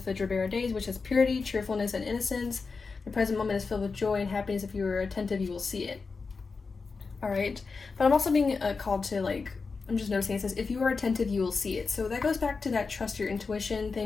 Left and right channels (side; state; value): right; quieter; 4.6 dB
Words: the Gerbera days, which is purity, cheerfulness, and innocence. The present moment is filled with joy and happiness. If you are attentive, you will see it. All right, but I'm also being called to, like, I'm just noticing it says, if you are attentive, you will see it. So that goes back to that trust your intuition